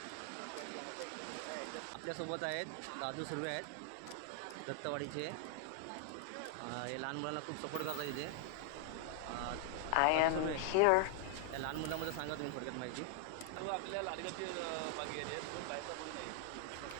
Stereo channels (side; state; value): both; different; correlation 0.00